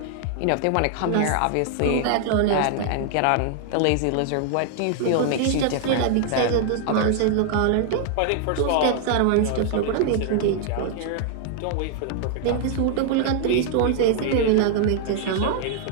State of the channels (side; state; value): both; different; correlation 0.00